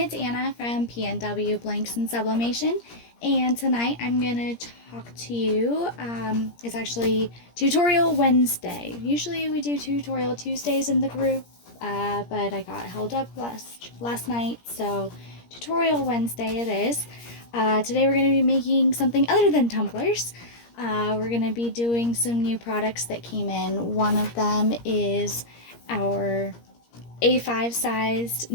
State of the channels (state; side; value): late; right; 17 ms